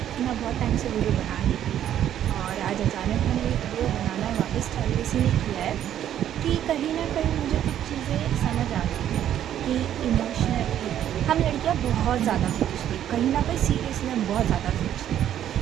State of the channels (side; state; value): left; quieter; 10.9 dB